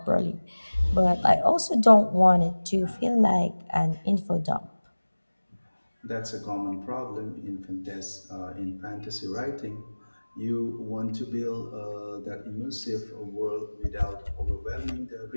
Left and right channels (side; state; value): both; inverted; correlation -1.00